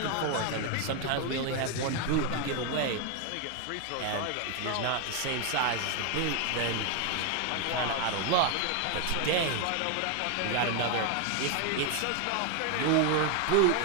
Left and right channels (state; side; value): different; both; correlation 0.01